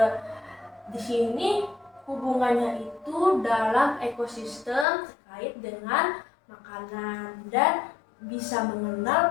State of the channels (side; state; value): right; drops out; at 4.9 s